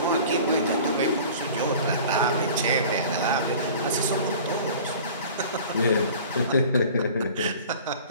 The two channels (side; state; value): both; inverted; correlation -0.43